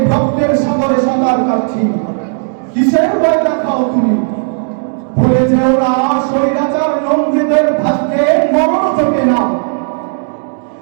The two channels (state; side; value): silent; left; digital silence